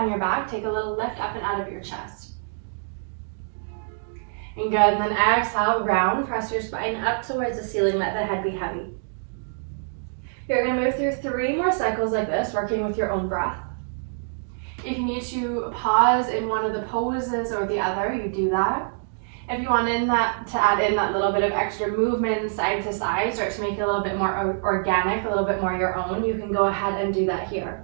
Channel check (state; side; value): silent; left; digital silence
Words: your back, take a little lift up and out of your chest. And good, and then exhale, round, press your spine up towards the ceiling, let the head be heavy. You're gonna move through 3 more cycles like this, working with your own breath. If you need to pause in one of the poses or the other, you do that. If you want to add in that little bit of extra movement side to side, start to make it a little bit more organic, a little bit more your own, you can go ahead and do that here.